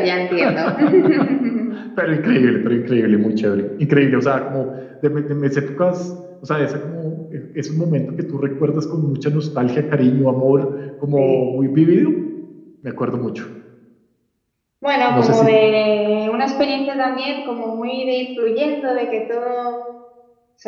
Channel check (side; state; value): both; identical; correlation 1.00